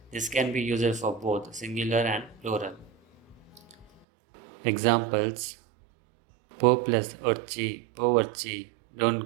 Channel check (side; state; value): left; drops out; at 4.0 s